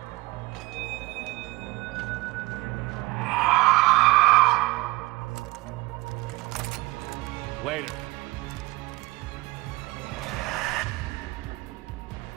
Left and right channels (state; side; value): quieter; left; 21.1 dB